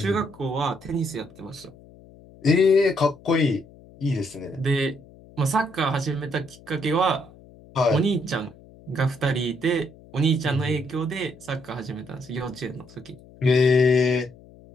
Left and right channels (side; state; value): left; noise; hum, 23 dB below the sound